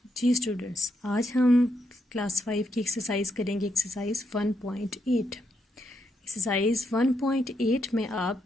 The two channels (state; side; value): normal; both; correlation 0.80